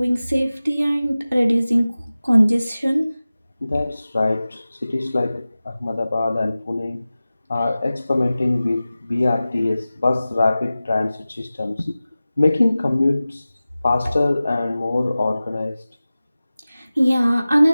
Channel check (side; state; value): both; inverted; correlation -0.96